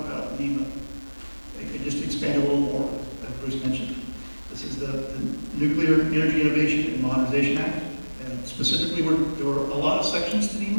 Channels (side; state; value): both; inverted; correlation -1.00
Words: about NEMA. Just to expand a little more, as Bruce mentioned. This is the Nuclear Energy Innovation and Modernization Act, and specifically there were a lot of sections to